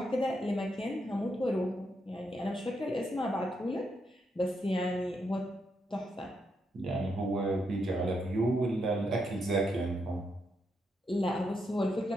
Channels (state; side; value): normal; both; correlation 0.81